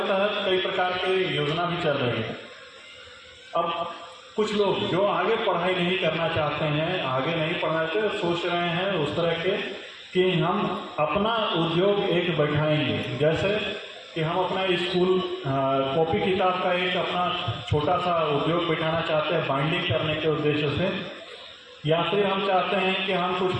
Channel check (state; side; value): identical; both; correlation 1.00